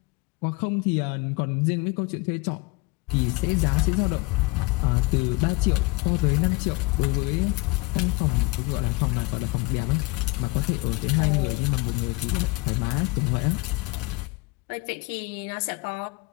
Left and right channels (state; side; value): quieter; right; 25.1 dB